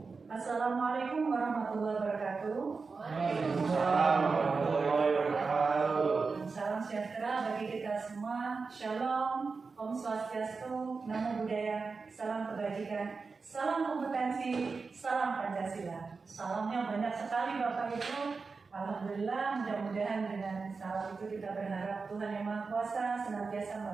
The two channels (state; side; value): quieter; left; 4.5 dB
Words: Assalamualaikum warahmatullahi wabarakatuh. Waalaikumsalam warahmatullahi wabarakatuh. Salam sejahtera bagi kita semua. Shalom, Om Swastiastu, Namo Buddhaya, salam kebajikan, salam kompetensi, salam Pancasila. Salamnya banyak sekali Bapak Ibu. Alhamdulillah, mudah-mudahan dengan salam itu kita berharap Tuhan Yang Maha Kuasa senantiasa